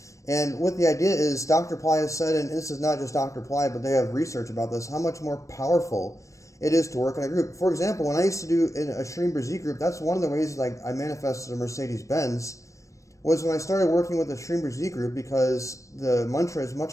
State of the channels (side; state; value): right; late; 0.15 ms